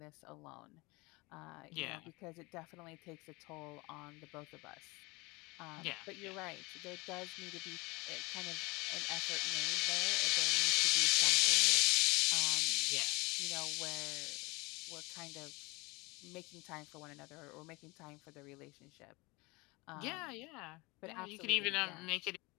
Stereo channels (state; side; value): quieter; right; 24.9 dB